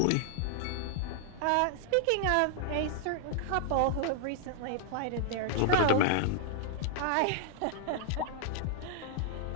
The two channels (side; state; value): both; different; correlation 0.00